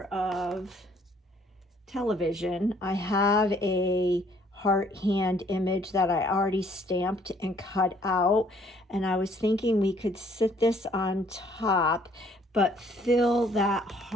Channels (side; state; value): both; normal; correlation 0.62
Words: of television, I have a heart hand image that I already stamped and cut out, and I was thinking we could sit this on top but fill that